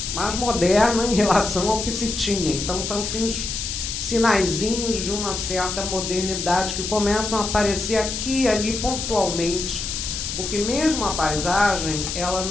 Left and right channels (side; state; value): left; noise; hiss, 4 dB below the sound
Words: moderna em relação ao que se tinha. Então, são assim, os sinaizinhos de uma certa modernidade que começam a aparecer aqui e ali pontualmente, porque mesmo a paisagem ela